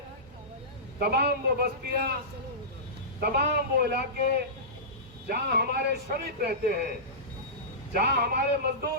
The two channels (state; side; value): normal; both; correlation -0.19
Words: तमाम वो बस्तियां, तमाम वो इलाके जहां हमारे श्रमिक रहते हैं, जहां हमारे